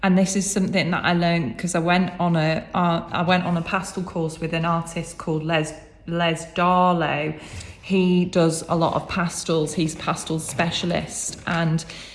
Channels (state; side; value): identical; both; correlation 1.00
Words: and this is something that I learned because I went on a pastel course with an artist called Les Darlow. He does a lot of pastels. He's a pastel specialist, and